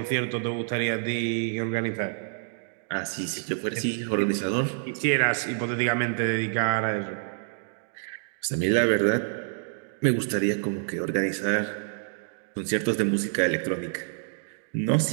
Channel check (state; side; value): silent; left; digital silence